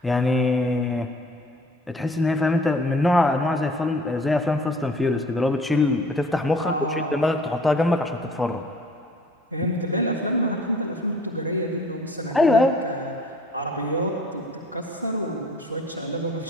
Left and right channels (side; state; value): both; normal; correlation 0.53